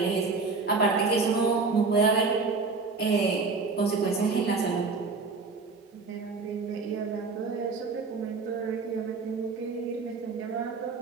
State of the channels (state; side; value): quieter; left; 4.3 dB